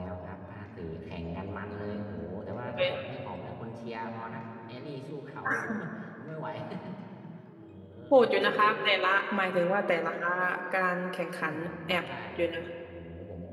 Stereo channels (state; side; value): identical; both; correlation 1.00